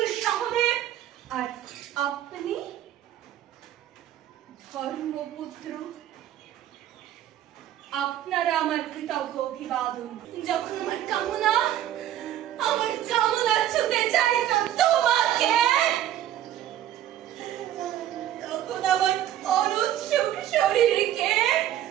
সহদেব, আর আপনি ধর্মপুত্র, আপনারা আমার কৃতজ্ঞ অভিবাদন। যখন আমার কামনা ছুতে চাইত তোমাকে, তখন আমার অনুৎসুক শরীরকে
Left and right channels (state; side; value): quieter; left; 11.9 dB